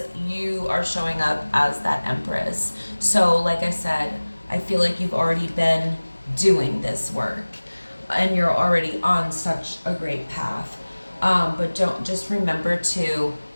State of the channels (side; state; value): both; inverted; correlation -1.00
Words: you are showing up as that Empress. So like I said, I feel like you've already been doing this work and you're already on such a great path. But just remember to